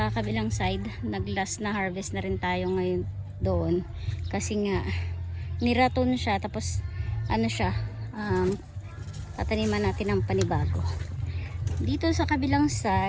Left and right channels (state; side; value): identical; both; correlation 1.00